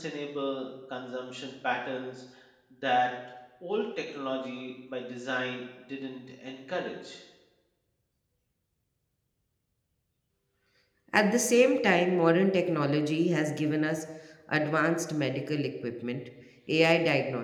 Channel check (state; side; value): identical; both; correlation 1.00